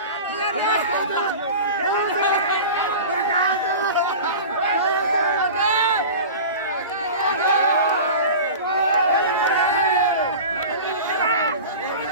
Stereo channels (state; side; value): inverted; both; correlation -0.34